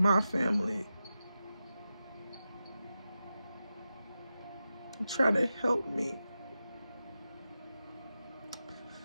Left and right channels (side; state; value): both; inverted; correlation -0.91